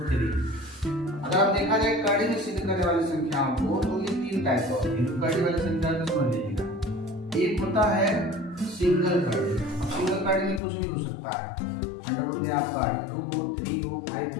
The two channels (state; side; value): drops out; right; at 10.6 s